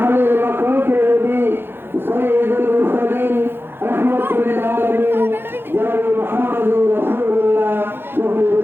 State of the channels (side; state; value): left; late; 0.10 ms